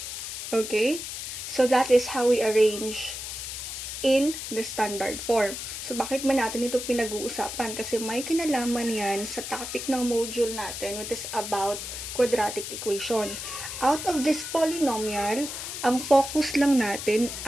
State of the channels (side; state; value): left; noise; hiss, 7 dB below the sound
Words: Okay? So, that is how we arrange in the standard form. So, bakit ba natin ito pinag-uusapan? Kasi may kinalaman yan sa topic ng module natin, which is about quadratic equation. Out of this polynomial, ang focus lang natin